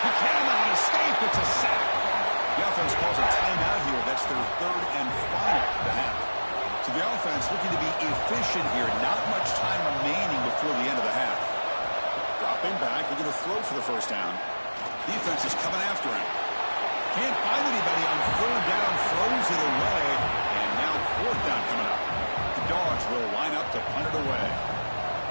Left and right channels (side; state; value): both; inverted; correlation -1.00